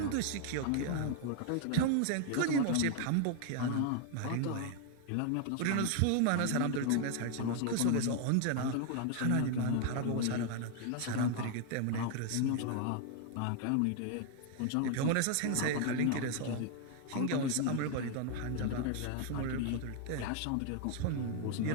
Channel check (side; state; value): both; different; correlation 0.00